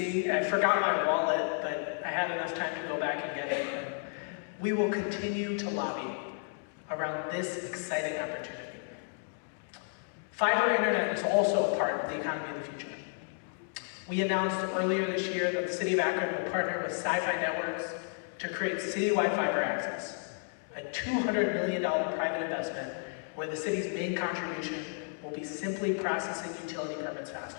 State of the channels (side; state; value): right; silent; 56 dB below the other